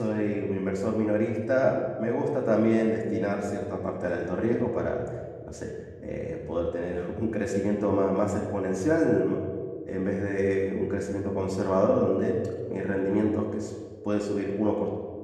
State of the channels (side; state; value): both; identical; correlation 1.00